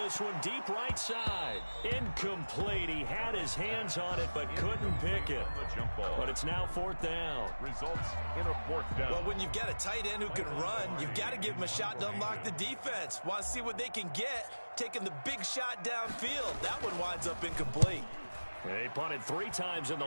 one deep right side. Incomplete. He had his hands on it but couldn't pick it. But it's now 4th down. Results in a 4th down. Well, when you've got a tight end who can run, you've got to give him a shot to unlock the defense. Want to see what they can get, taking the big shot downfield. That one winds up incomplete. He punted 3 times in the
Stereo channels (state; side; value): inverted; both; correlation -1.00